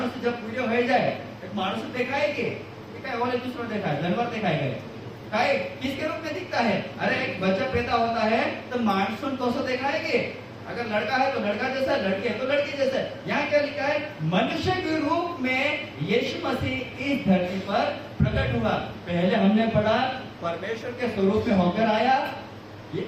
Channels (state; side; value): identical; both; correlation 1.00